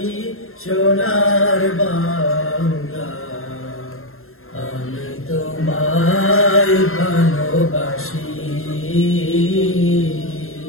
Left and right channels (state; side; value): late; right; 0.61 ms